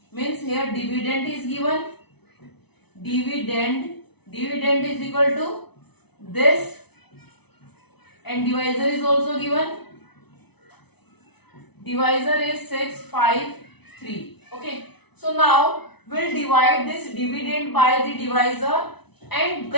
means here dividend is given. Dividend is equal to this, and divisor is also given. Divisor is 653. Okay. So now we'll divide this dividend by the divisor, and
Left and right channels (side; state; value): right; late; 0.99 ms